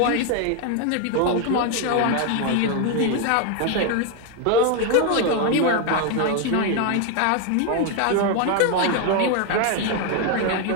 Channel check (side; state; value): both; different; correlation 0.01